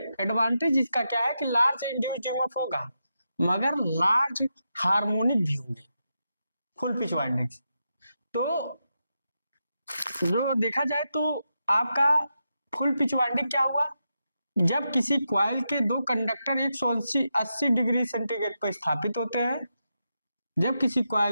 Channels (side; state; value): both; inverted; correlation -0.87